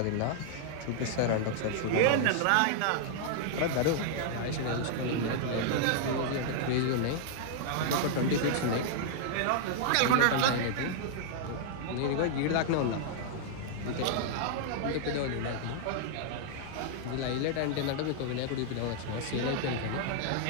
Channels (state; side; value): different; both; correlation -0.01